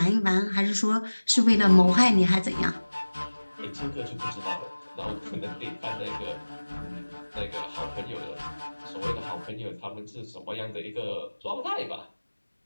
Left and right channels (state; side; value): inverted; both; correlation -1.00